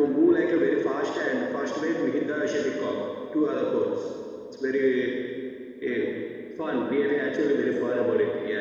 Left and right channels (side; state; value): both; identical; correlation 1.00